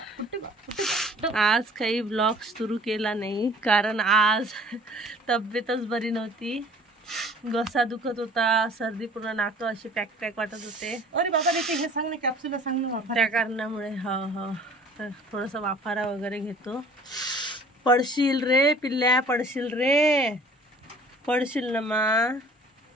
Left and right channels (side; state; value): both; normal; correlation 0.50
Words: आज काही ब्लॉग सुरू केला नाही कारण आज तब्येतच बरी नव्हती. घसा दुखत होता, सर्दी, पूर्ण नाक अशी पॅक पॅक वाटत होते. अरे बाबा हे सांग ना, कॅप्सूल सांग ना. त्या कारणामुळे तर थोडंसं वाफारा वगैरे घेतो. पडशील रे पिल्ल्या, पडशील रे, पडशील ना मा.